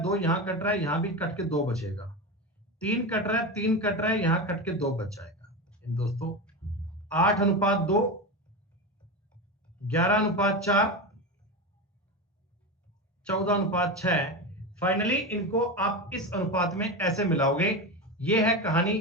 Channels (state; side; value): normal; both; correlation 0.20